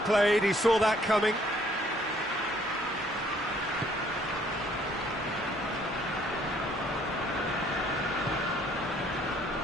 he saw that coming.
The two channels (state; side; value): normal; both; correlation 0.62